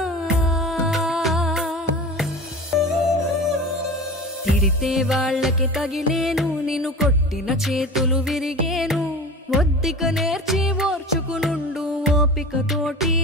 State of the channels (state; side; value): normal; both; correlation 0.33